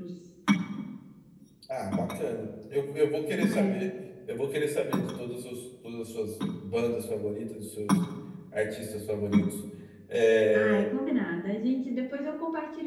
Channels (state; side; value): identical; both; correlation 1.00